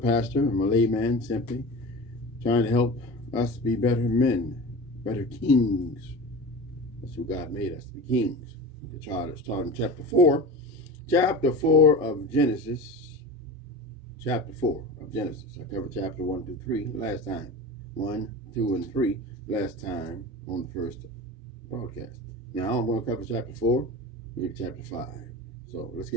I'm a layman, simply trying to help us be better men, better kings. That's who God made us, to be kings. The child is taught in chapter 4. Chapter 4 of Genesis. Chapter 4 of Genesis. I covered chapter 1 through 3 last time. 1, 2, and 3 last time on the first broadcast. Now I'm going to cover chapter 4, maybe chapter 5. So let's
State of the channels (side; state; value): both; normal; correlation 0.31